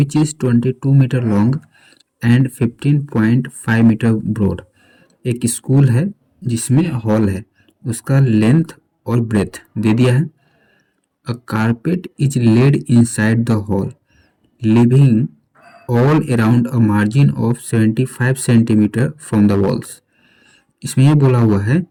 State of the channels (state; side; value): identical; both; correlation 1.00